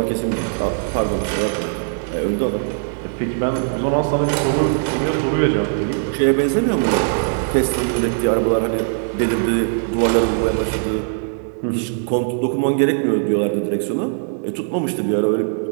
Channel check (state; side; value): silent; left; digital silence